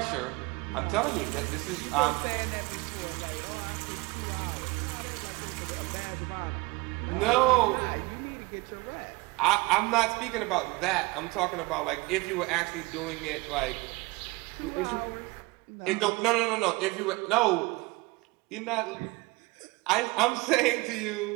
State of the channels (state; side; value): quieter; left; 23.7 dB